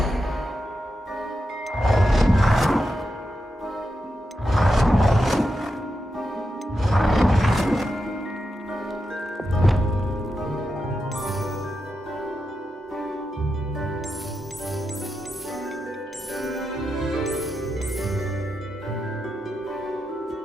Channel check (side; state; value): both; normal; correlation 0.87